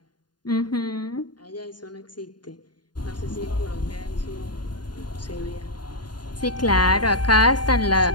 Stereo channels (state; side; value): late; right; 0.70 ms